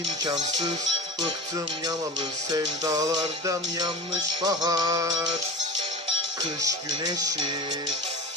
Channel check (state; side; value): normal; both; correlation 0.31